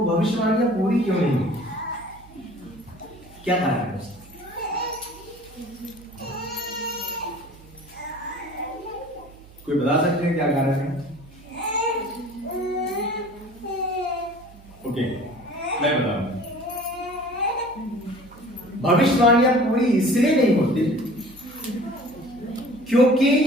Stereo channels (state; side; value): noise; right; hum, 22 dB below the sound